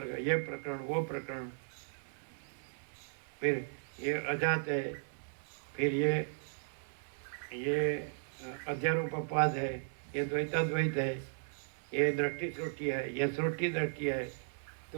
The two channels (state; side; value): silent; left; 54 dB below the other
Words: ये प्रकरण वो प्रकरण, फिर ये अजात है, फिर ये अध्यारोपवाद है, ये द्वैताद्वैत है, ये दृष्टि सृष्टि है, ये सृष्टि दृष्टि है,